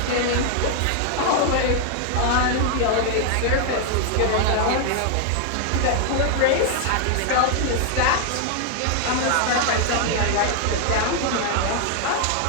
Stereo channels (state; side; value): different; both; correlation 0.00